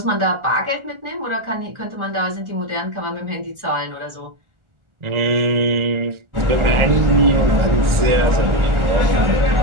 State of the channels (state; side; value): late; left; 1.4 ms